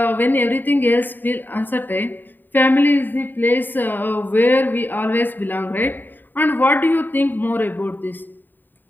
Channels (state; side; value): late; right; 0.091 ms